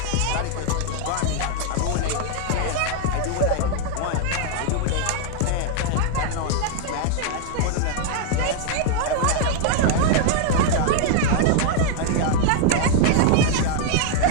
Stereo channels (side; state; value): both; different; correlation 0.00